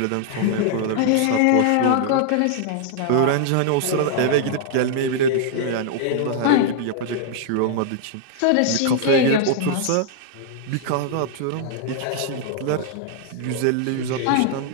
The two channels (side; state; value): both; different; correlation -0.01